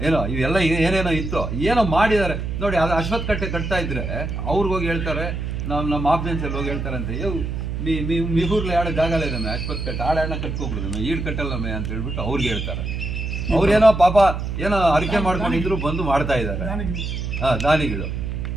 ಏನೋ ಇವೆಲ್ಲ ಏನೇನೋ ಇತ್ತು, ಏನೋ ಮಾಡಿದ್ದಾರೆ ನೋಡಿ. ಅದು ಅಶ್ವತ್ಥ ಕಟ್ಟೆ ಕಟ್ತಾ ಇದ್ರೆ ಅವ್ರಿಗೋಗಿ ಹೇಳ್ತಾರೆ, ನಮ್ಮ ಆಫ್ಜೆನ್ಸಲ್ಲಿ ಹೋಗಿ ಹೇಳ್ತಾರಂತೆ, ಮಿಗೂರ್ಲಿ ಆಡೋ ಜಾಗ ಇದ್ದಾನೆ ಅಶ್ವತ್ಥ ಕಟ್ಟೆ, ಆಡಾಡನ ಕಟ್ಕೊಬಿಡಿದಮ್ಮೆ, ಈಡ್ ಕಟ್ಟಲ್ಲಮ್ಮೆ ಅಂತ ಹೇಳ್ಬಿಟ್ಟು ಅವ್ರಿಗೆ ಹೇಳ್ತಾರೆ. ಅವ್ರೇನೋ ಪಾಪ ಏನೋ ಅರಿಕೆ ಮಾಡ್ಕೊಂಡಿದ್ರು ಬಂದು ಮಾಡ್ತಾ ಇದ್ದಾರೆ. ದಾನಿಗಳು,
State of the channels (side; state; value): right; noise; hum, 4 dB below the sound